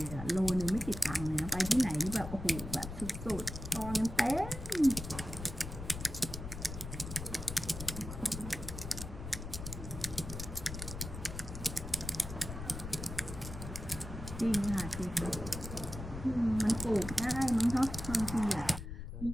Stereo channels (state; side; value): noise; left; rumble, 8 dB below the sound